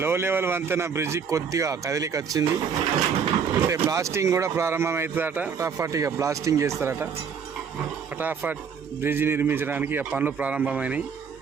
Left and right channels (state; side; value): quieter; left; 6.5 dB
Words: లో లెవెల్ వంతెన బ్రిడ్జి కొద్దిగా కదిలికి వచ్చింది. అంటే బ్లాస్టింగ్ కూడా ప్రారంభమవుతుందట. ఫటాఫట్ బ్లాస్టింగ్ చేస్తారట. ఫటాఫట్ బ్రిడ్జి నిర్మించడానికి పనులు ప్రారంభమైనాయి.